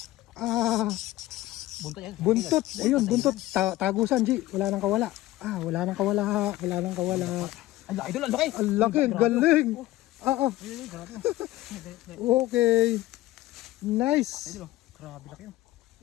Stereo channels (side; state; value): right; quieter; 16.7 dB